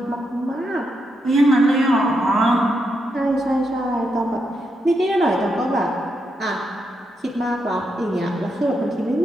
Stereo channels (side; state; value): both; normal; correlation 0.82